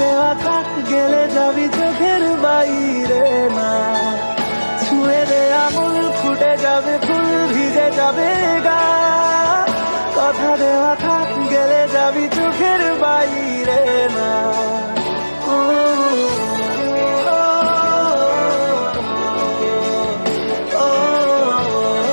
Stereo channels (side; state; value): both; inverted; correlation -1.00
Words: দেওয়া থাক, গেলে যাবি চোখের বাইরে না। ছুঁয়ে দে আঙুল, ফুটে যাবে ফুল, ভিজে যাবে গা। কথা দেওয়া থাক, গেলে যাবি চোখের বাইরে না। ও, ও, ও, ও,